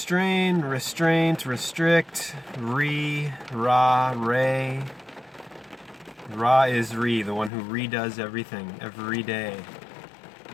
restraint, restrict, ra, re. Ra is re, the one who redoes everything every day.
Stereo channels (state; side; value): drops out; right; at 7.5 s